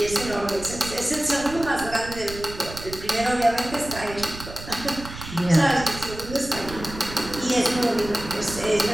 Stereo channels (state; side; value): noise; right; rumble, 12 dB below the sound